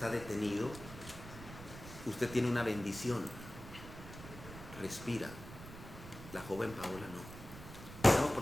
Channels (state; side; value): noise; right; rumble, 13 dB below the sound